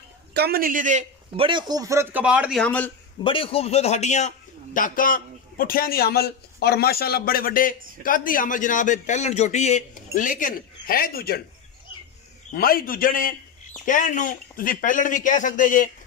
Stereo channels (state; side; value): quieter; right; 5.5 dB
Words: कम नीली दे, बड़े खूबसूरत कबाड़ दी हमल, बड़ी खूबसूरत हड्डियां टाकां पुठियां दी हमल और माशाअल्लाह बड़े बड़े कद दी हमल जनाब पहलन जोटी है, लेकिन है दूजण मझ दूजण है। कहण नूं तुसीं पहलण भी कह सकदे जे,